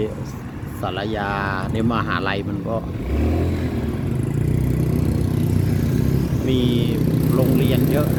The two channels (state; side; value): identical; both; correlation 1.00